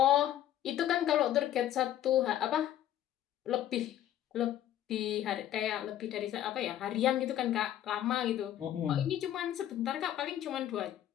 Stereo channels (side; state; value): right; quieter; 11.8 dB